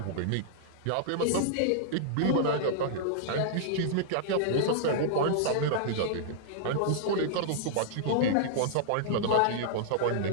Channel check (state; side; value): different; both; correlation -0.02